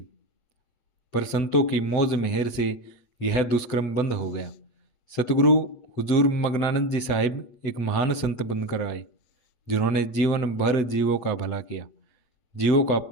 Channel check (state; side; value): late; right; 7.9 ms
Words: पर संतों की मौज मेहर से यह दुष्कर्म बंद हो गया। सतगुरु हुजूर मगनानंद जी साहिब एक महान संत बनकर आए, जिन्होंने जीवन भर जीवों का भला किया, जीवों का